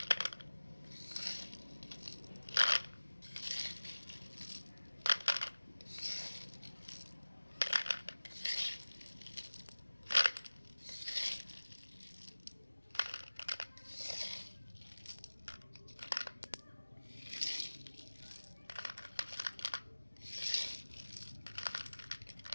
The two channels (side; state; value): both; inverted; correlation -1.00